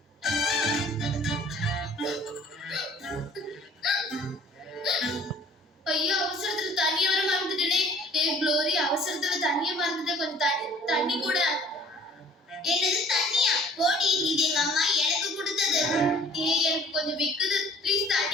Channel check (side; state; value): both; normal; correlation 0.53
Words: ஐயோ, அவசரத்துல தண்ணி வர மறந்துட்டேனே. க்ளோரி, அவசரத்துல தண்ணிய மறந்துட்டேன். கொஞ்சம் தண்ணி கூட. என்னது தண்ணியா? போடி, இது எங்க அம்மா எனக்கு கொடுத்தது. எனக்கு கொஞ்சம் விக்குது. ப்ளீஸ்